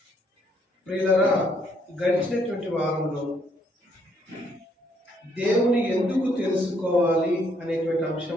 ప్రియులారా, గడిచినటువంటి వారంలో దేవుని ఎందుకు తెలుసుకోవాలి అనేటువంటి అంశం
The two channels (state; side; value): normal; both; correlation 0.70